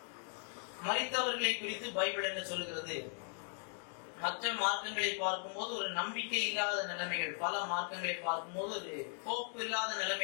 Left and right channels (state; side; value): silent; right; 52 dB below the other